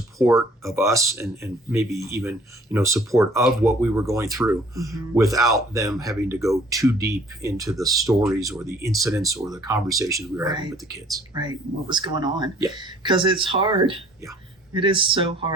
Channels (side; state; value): both; normal; correlation 0.55